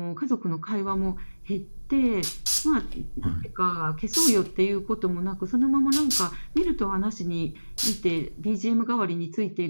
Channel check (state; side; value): inverted; both; correlation -1.00